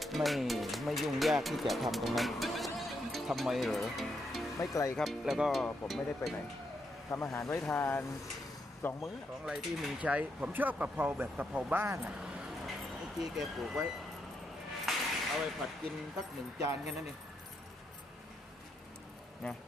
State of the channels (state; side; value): normal; both; correlation 0.80